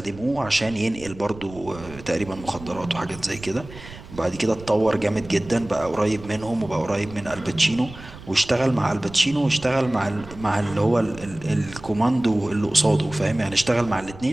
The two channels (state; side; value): noise; right; rumble, 17 dB below the sound